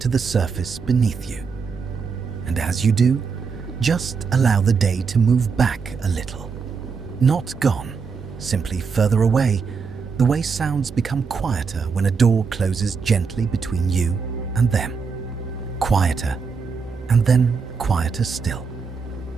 the surface beneath you. And as you do, just allow the day to move back a little. Not gone, simply further away, the way sounds become quieter when a door closes gently between you and them. Quieter, and then quieter still.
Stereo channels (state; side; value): quieter; left; 5.4 dB